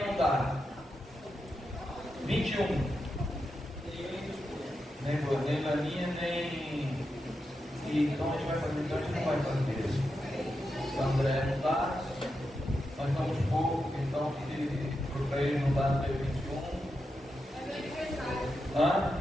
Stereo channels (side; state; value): both; normal; correlation 0.87